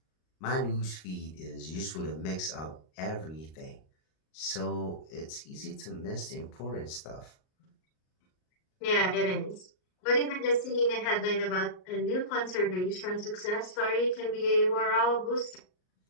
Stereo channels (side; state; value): right; late; 38 ms